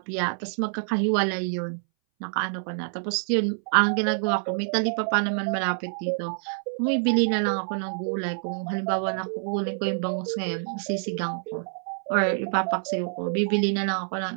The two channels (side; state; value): left; silent; 60 dB below the other